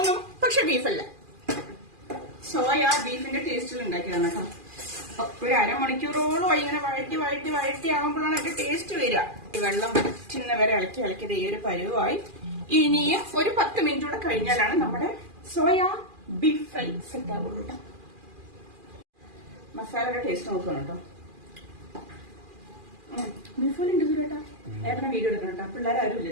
പക്ഷെ ബീഫല്ല, സോയ ബീഫിന്റെ ടേസ്റ്റിൽ ഉണ്ടാക്കിയതാണ് കേട്ടോ. അപ്പൊ ഒരു അരമണിക്കൂറോളം ഇങ്ങനെ വഴറ്റി ആകുമ്പോഴാണ് അതിന്റെ ടേസ്റ്റ് വരിക. വെള്ളം വറ്റുന്ന വരെ ഇളക്കി ഈ ഒരു പരുവായി. ഇനിയും ഒരു 10 മിനിറ്റ് കൂടെ കഴിഞ്ഞാലാണ് നമ്മുടെ സോയ ബീഫ് ഫ്രൈ സെറ്റ് ആവുള്ളൂ കേട്ടോ. മസാലയുടെ ടേസ്റ്റ് നോക്കണം കേട്ടോ. ബീഫ് പോലെ ഉണ്ട് കേട്ടോ. ഏട്ടനെ വീഡിയോ എടുക്കണം കേട്ടോ. പിള്ളേരാരും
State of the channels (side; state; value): left; late; 2.4 ms